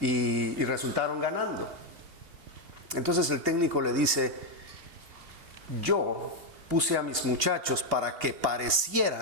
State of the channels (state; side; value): late; left; 2.7 ms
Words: resultaron ganando. Entonces el técnico le dice, yo puse a mis muchachos para que